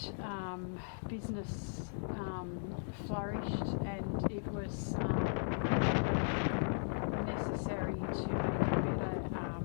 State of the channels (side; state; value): right; silent; digital silence